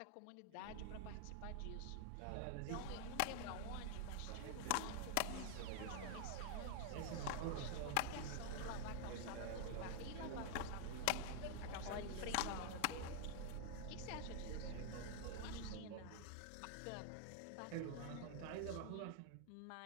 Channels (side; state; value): both; different; correlation 0.00